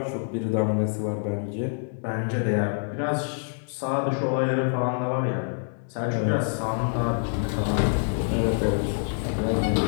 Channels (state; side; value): silent; right; digital silence